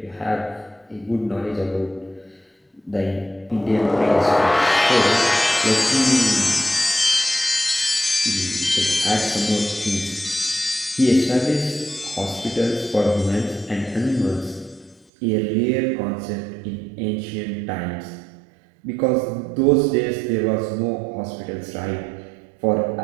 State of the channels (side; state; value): left; drops out; at 15.1 s